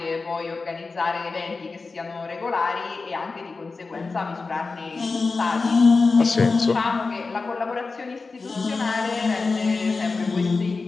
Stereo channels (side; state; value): right; quieter; 4.1 dB